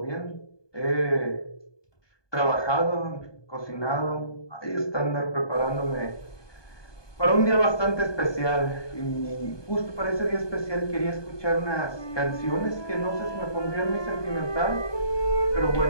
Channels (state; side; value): late; right; 1.2 ms